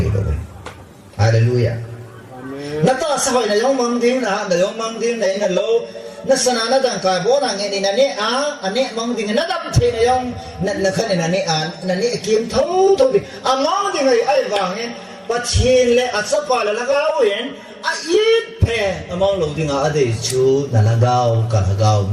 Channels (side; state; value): both; identical; correlation 1.00